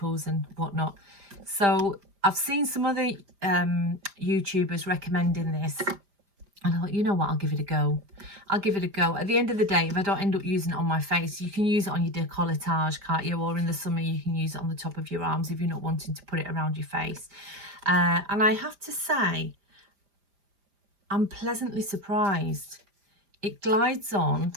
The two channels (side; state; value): left; late; 5.0 ms